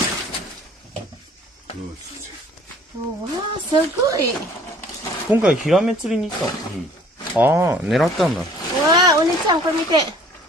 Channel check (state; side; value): normal; both; correlation 0.54